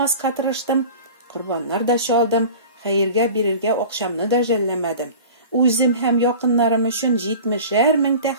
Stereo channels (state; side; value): inverted; both; correlation -0.39